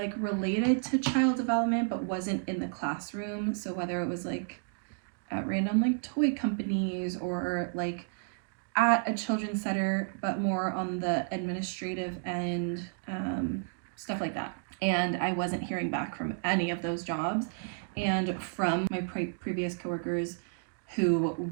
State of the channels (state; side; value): silent; left; 57 dB below the other